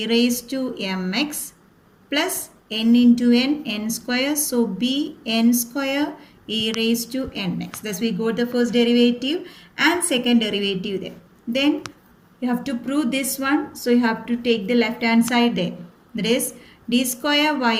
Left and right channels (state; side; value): identical; both; correlation 1.00